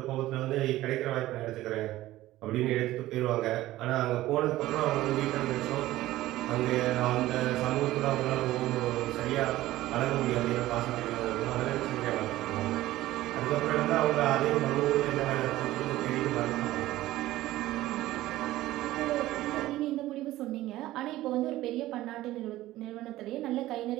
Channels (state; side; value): quieter; left; 15.9 dB